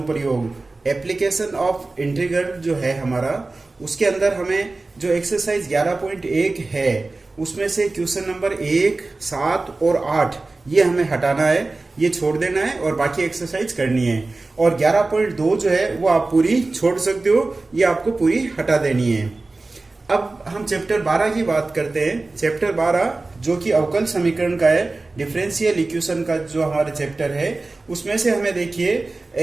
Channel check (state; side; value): quieter; left; 3.4 dB